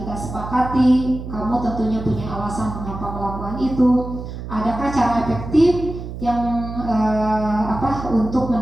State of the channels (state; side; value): noise; right; hum, 9 dB below the sound